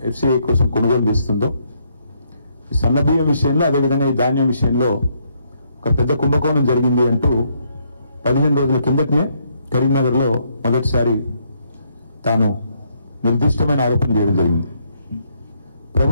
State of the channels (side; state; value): both; inverted; correlation -0.73